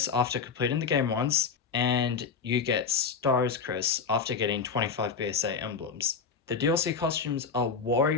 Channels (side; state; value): right; quieter; 5.7 dB